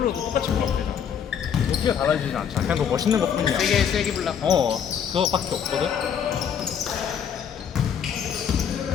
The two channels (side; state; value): right; quieter; 8.0 dB